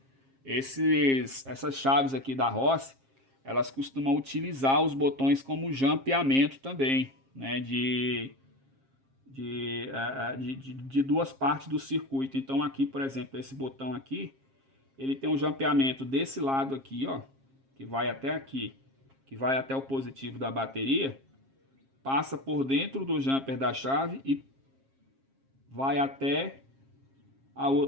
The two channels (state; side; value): late; left; 7.4 ms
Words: chaves aqui da Rossi, elas costumam utilizar os botões como jampeamento também, né, de duas partes do circuito. Então aqui, por exemplo, esse botão aqui, ele tem um jampeamento desse lado aqui, ó, que vai até aqui, que vai até o positivo da bateria, passa por dentro do jumper da chave e vai até a